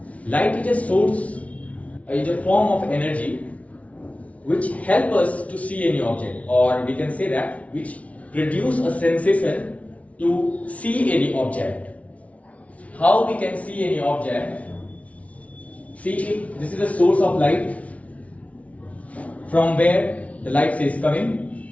Light is a source, is a form of energy which help us to see any object, or we can say that which produce a sensation to see any object. How we can see any object? See, this is a source of light from where the light is coming,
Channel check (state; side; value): late; right; 0.066 ms